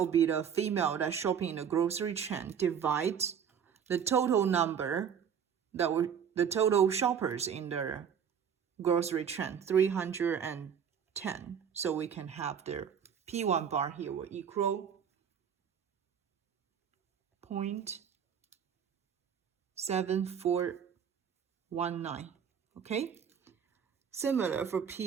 be the female that shopping in the grocery chain, divide the total number that were the total shoppers in the grocery chain, 310. So we can have the P1 bar here will equal 0.7419, okay? Similar for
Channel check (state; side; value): quieter; left; 7.8 dB